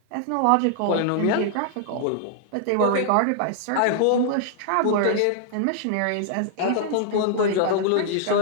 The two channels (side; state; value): both; different; correlation -0.01